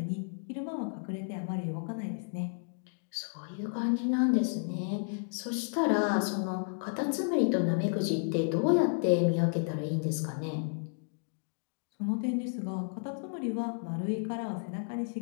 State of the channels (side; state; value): right; silent; digital silence